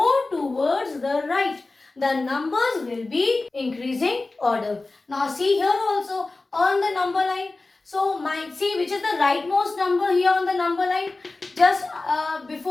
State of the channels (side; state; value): right; quieter; 3.3 dB